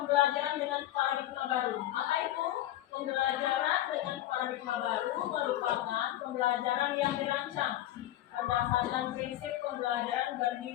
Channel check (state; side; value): quieter; right; 14.0 dB